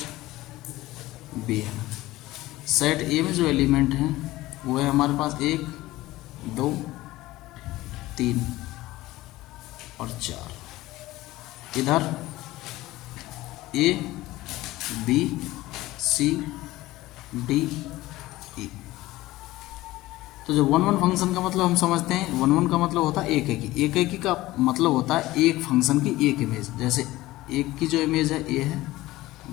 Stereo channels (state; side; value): quieter; right; 17.7 dB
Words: बी है। सेट ए में जो एलिमेंट हैं वो है हमारे पास 1 2 3 और 4, इधर A B C D E. तो जो 1 1 फंक्शन का मतलब हम समझते हैं, 1 1 का मतलब होता है एक एकी। एक एकी का मतलब होता है एक फंक्शन की एक इमेज। जैसे एक की जो इमेज है ए है,